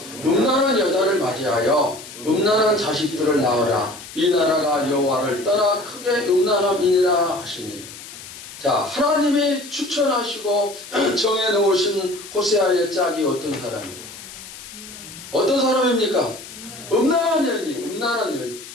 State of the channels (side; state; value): left; noise; hiss, 15 dB below the sound